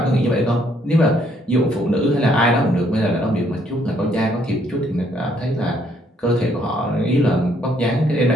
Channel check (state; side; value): normal; both; correlation 0.68